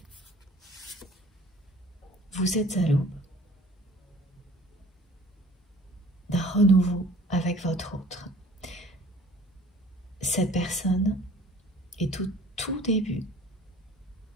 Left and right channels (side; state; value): both; normal; correlation 0.50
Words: Vous êtes à l'aube d'un renouveau avec votre autre. Cette personne est au tout début